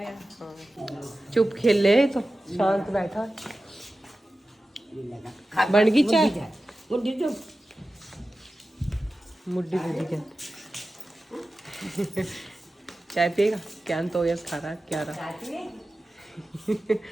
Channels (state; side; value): normal; both; correlation 0.94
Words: यार, हाँ चुप खेल ले, तो शांत बैठा है। बन गई चाय, मुड्डी तो मुड्डी दे दी। चाय पिएगा क्यान, तो यस खा रहा है क्या रहा।